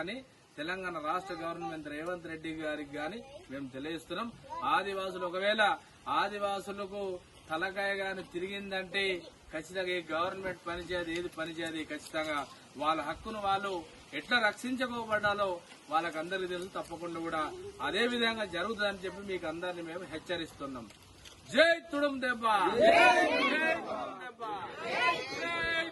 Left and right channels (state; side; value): identical; both; correlation 1.00